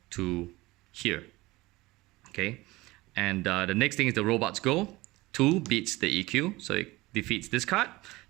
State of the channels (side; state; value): left; quieter; 20.5 dB